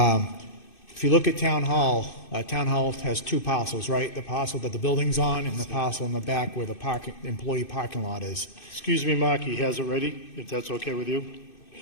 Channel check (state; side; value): late; right; 2.6 ms